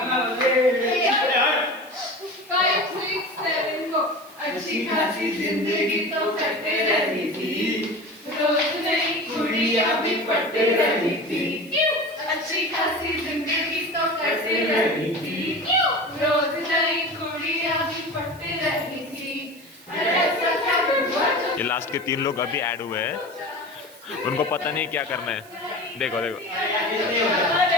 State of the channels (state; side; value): noise; right; hiss, 23 dB below the sound